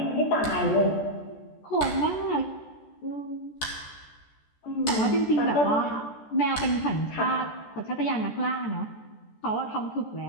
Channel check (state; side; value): late; right; 14 ms